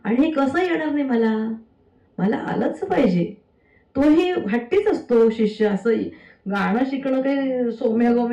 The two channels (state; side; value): identical; both; correlation 1.00